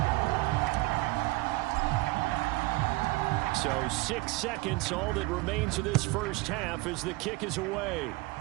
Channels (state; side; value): quieter; left; 22.0 dB